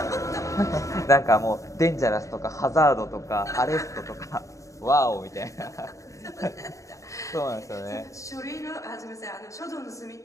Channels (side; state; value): right; late; 0.15 ms